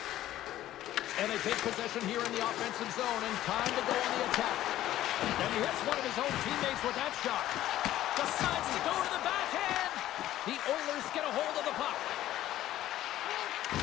And they take possession here in the offensive zone, and time to go on the attack. And he hits one of his own teammates with that shot. Decides to go to the backhand. The Oilers get a hold of the puck.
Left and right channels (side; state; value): right; quieter; 13.7 dB